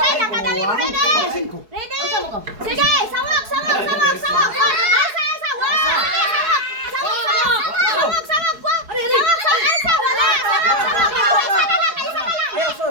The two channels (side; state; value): left; late; 4.7 ms